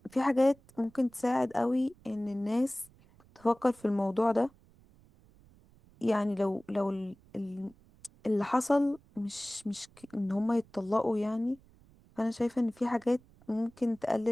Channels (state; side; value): noise; right; rumble, 28 dB below the sound